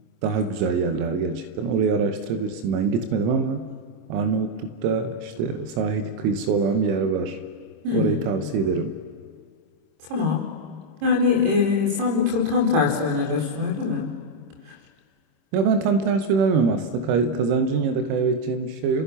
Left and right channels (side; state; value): left; late; 26 ms